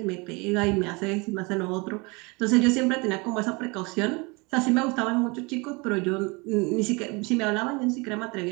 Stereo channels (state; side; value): quieter; left; 27.8 dB